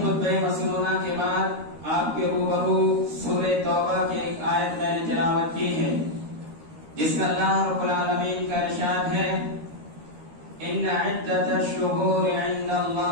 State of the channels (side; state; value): left; late; 13 ms